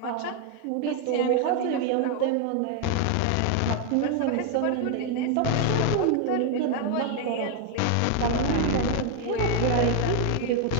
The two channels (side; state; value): both; different; correlation 0.01